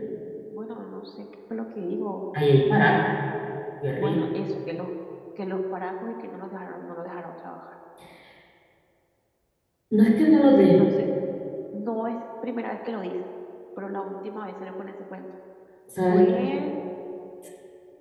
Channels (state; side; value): identical; both; correlation 1.00